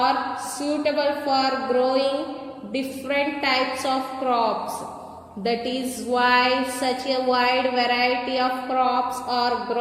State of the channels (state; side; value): identical; both; correlation 1.00